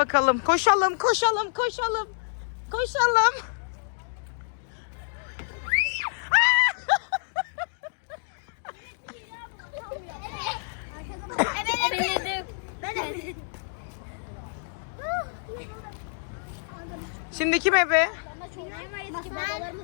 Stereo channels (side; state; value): right; silent; digital silence